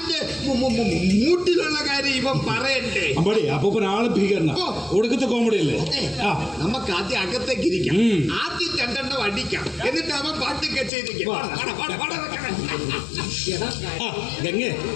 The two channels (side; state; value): right; drops out; at 10.9 s